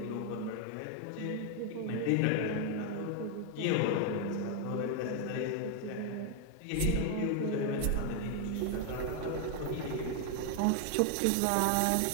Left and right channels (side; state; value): both; different; correlation 0.00